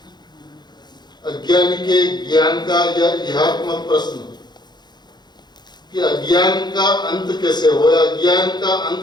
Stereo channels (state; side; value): late; right; 0.21 ms